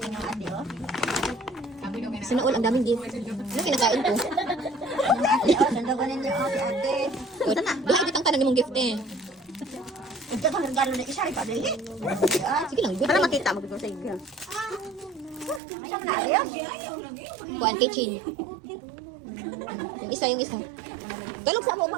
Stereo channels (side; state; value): left; drops out; at 15.6 s